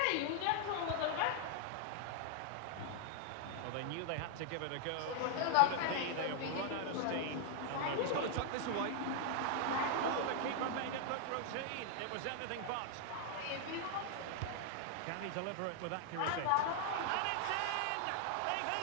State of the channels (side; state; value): both; different; correlation 0.00